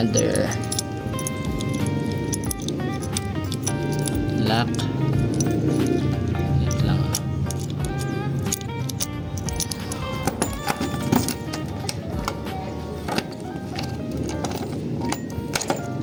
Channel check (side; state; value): both; identical; correlation 1.00